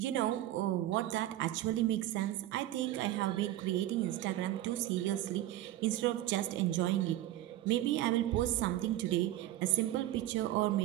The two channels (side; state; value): left; quieter; 14.2 dB